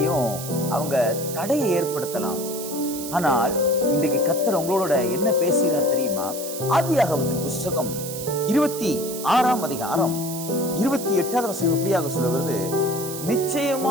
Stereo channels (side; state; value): right; noise; hiss, 9 dB below the sound